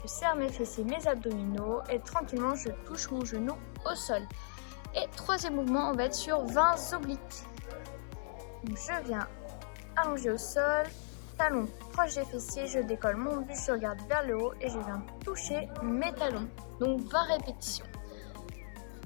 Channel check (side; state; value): right; silent; 54 dB below the other